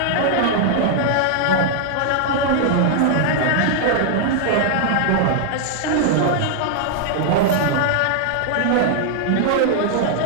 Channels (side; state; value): both; different; correlation 0.00